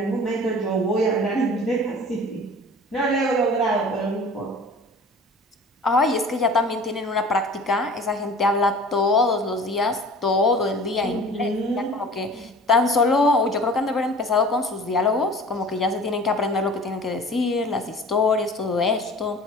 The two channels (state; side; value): normal; both; correlation 0.43